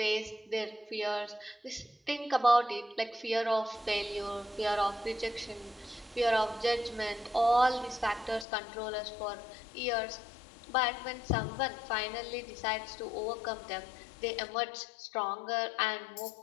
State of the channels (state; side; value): drops out; right; at 8.5 s